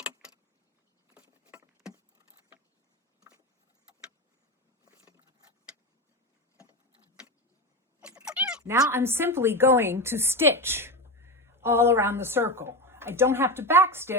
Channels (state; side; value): normal; both; correlation 0.18